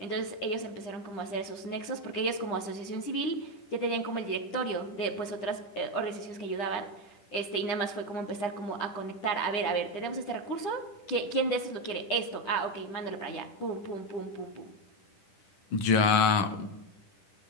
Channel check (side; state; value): right; late; 10 ms